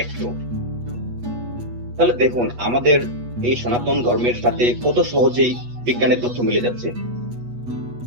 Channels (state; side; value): late; left; 8.3 ms